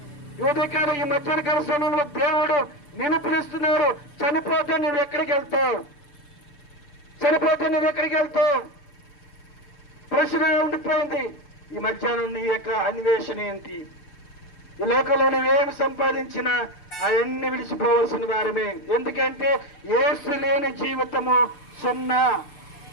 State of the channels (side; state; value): right; late; 6.8 ms